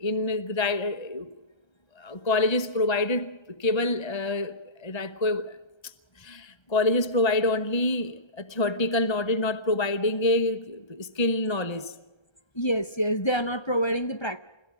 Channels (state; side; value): late; right; 1.3 ms